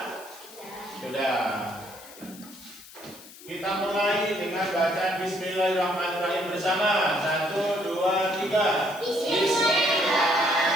Sudah. Kita mulai dengan bacaan Bismillahirrahmanirrahim bersama. 1, 2, 3.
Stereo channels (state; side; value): noise; left; hiss, 18 dB below the sound